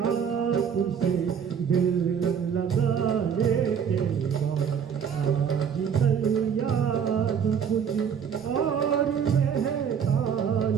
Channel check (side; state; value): left; quieter; 7.4 dB